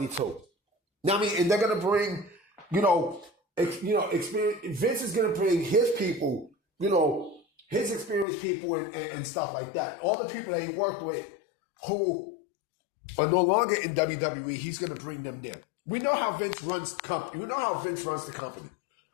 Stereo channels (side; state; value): right; drops out; at 8.2 s